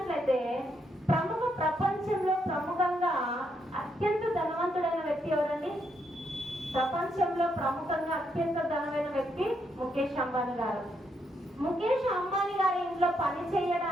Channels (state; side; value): normal; both; correlation 0.77